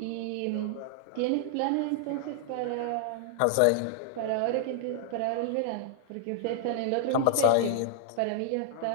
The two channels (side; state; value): both; different; correlation -0.01